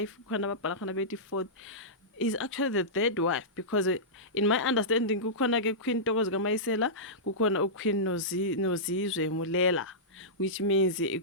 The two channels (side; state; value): both; normal; correlation -0.15